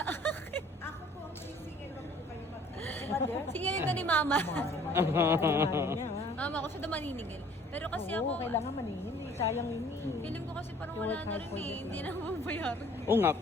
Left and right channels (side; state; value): both; normal; correlation 0.54